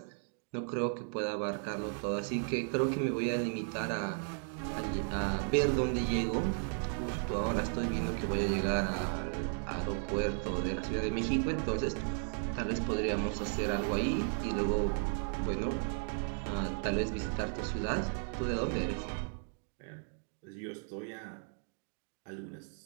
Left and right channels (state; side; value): silent; left; 54 dB below the other